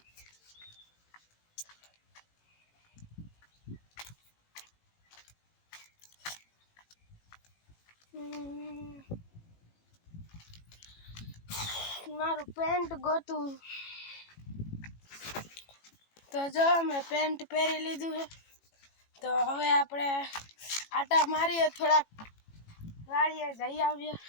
મારું પેન્ટ ગોતું તો જો મેં પેન્ટ પહેરી લીધું છે તો હવે આપણે આટા મારીએ થોડાક વાડીએ જઈ આવીએ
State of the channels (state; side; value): late; right; 18 ms